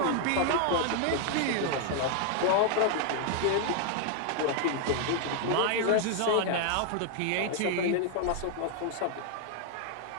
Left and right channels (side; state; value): both; different; correlation 0.00